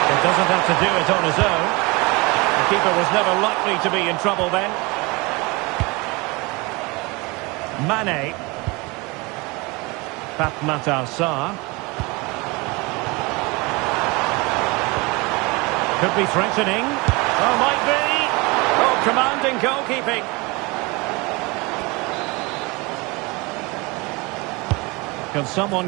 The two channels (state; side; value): quieter; left; 25.9 dB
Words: Doesn't have to do it on his own. The keeper was never likely to be in trouble then. Mane. Pape Matar Sarr. Could be threatening. Oh, might be. Oh, commanding goalkeeping. Can